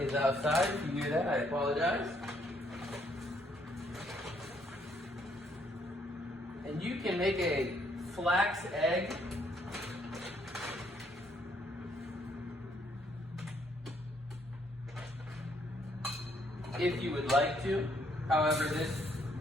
outside. If you hear that, I apologize. And you can make a flax egg if you would like to. However, this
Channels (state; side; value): normal; both; correlation 0.69